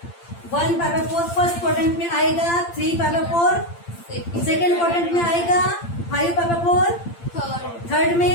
1 पाई बाय 4 फर्स्ट क्वाड्रेंट में आएगा, 3 पाई बाय 4 सेकेंड क्वाड्रेंट में आएगा, 5 पाई बाय 4 थर्ड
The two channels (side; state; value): right; late; 8.8 ms